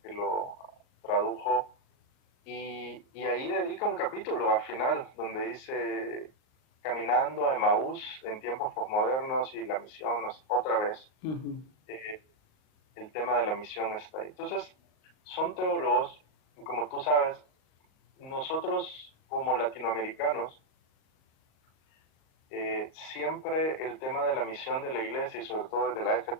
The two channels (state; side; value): late; right; 38 ms